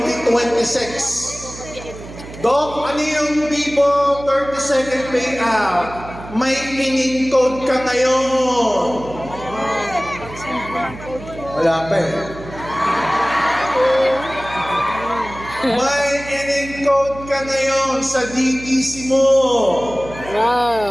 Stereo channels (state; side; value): noise; right; hum, 14 dB below the sound